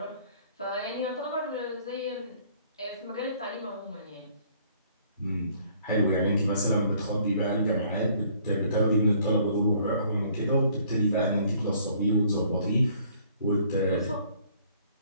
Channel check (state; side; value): inverted; both; correlation -0.60